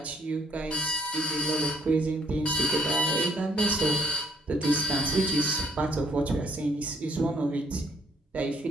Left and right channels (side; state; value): both; normal; correlation 0.64